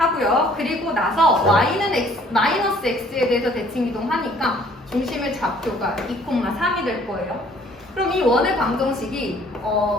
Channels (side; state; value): both; normal; correlation 0.58